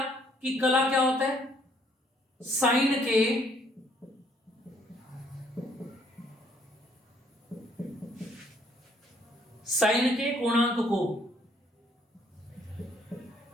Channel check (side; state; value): both; normal; correlation 0.65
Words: कि कला क्या होता है? साइन के कोणांक को,